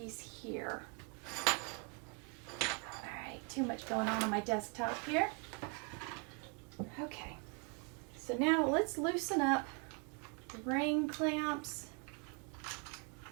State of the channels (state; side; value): quieter; left; 37.2 dB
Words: here. All right, too much going on my desktop here. Okay. So now let's loosen up the ring clamps.